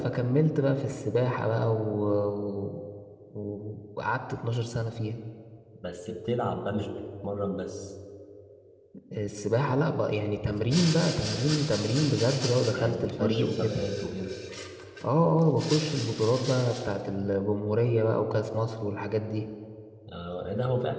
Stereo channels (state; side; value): identical; both; correlation 1.00